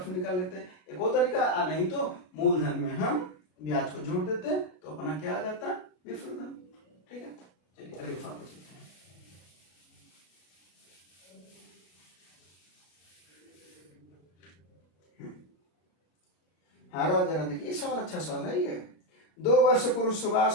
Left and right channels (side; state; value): right; late; 33 ms